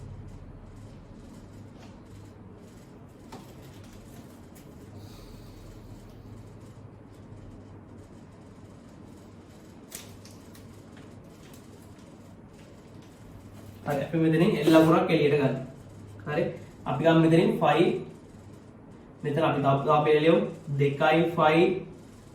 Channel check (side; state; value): both; identical; correlation 1.00